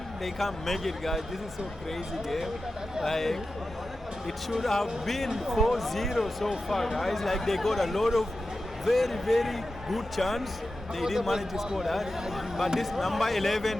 they can't make it, guys. This is so crazy game. Like, it should have been 4-0 so far, guys. Like, they got a lot of very, very good chance. They didn't manage to score that. But this number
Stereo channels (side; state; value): both; normal; correlation 0.92